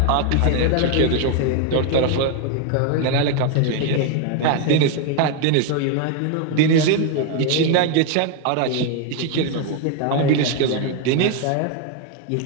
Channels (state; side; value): different; both; correlation 0.01